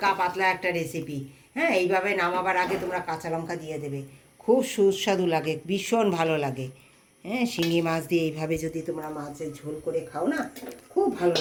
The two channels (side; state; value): both; identical; correlation 1.00